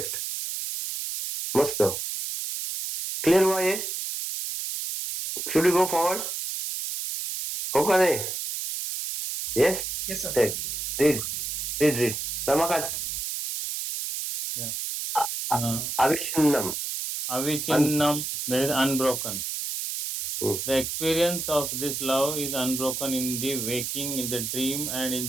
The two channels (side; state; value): right; noise; hiss, 3 dB below the sound